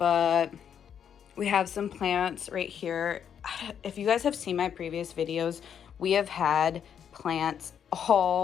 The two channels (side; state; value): right; quieter; 8.3 dB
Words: we have some plants right here. If you guys have seen my previous videos, we have had plants